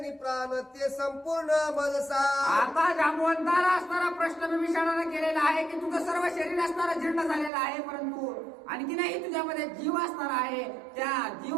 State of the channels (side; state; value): left; drops out; at 7.5 s